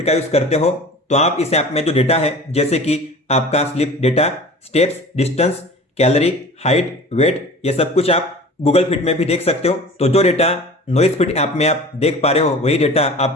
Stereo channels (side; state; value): both; normal; correlation 0.40